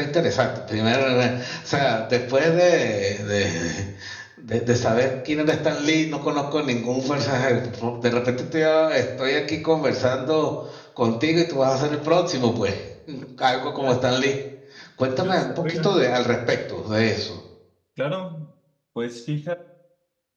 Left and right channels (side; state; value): both; identical; correlation 1.00